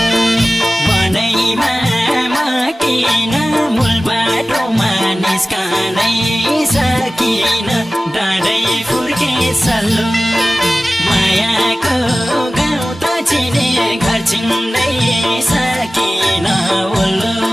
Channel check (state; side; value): normal; both; correlation 0.96